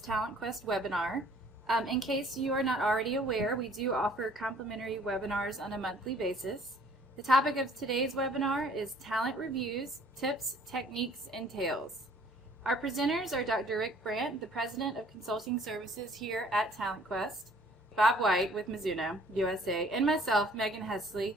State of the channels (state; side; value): normal; both; correlation 0.56